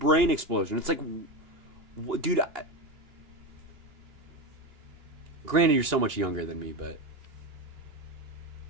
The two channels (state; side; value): late; left; 2.8 ms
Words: explosion. It's like, dude, granted, you're so much younger than me, but